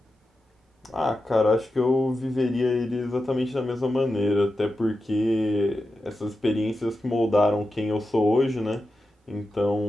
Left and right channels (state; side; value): normal; both; correlation 0.91